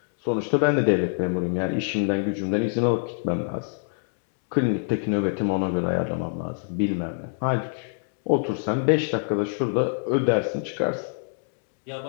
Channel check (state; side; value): silent; right; digital silence